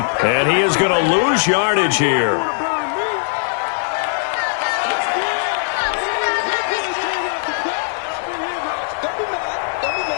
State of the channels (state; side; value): silent; right; 66 dB below the other